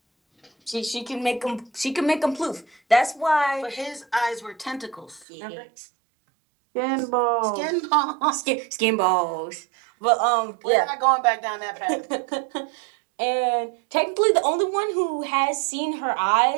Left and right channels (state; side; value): drops out; left; at 5.2 s